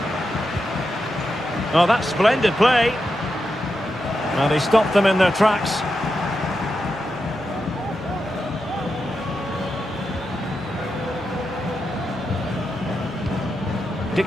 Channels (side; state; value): both; normal; correlation 0.87